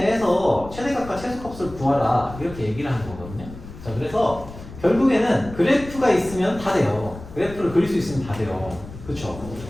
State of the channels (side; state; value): left; noise; rumble, 14 dB below the sound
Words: 최대값과 최소값을 구하라. 이렇게 얘기를 하는 거거든요. 자, 그래서 결국에는 그래프가 있으면 다 돼요. 그래프를 그릴 수 있으면 다 돼요. 그쵸?